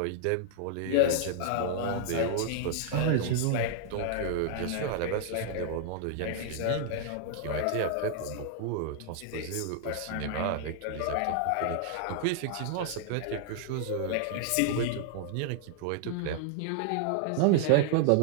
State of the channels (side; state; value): both; different; correlation -0.01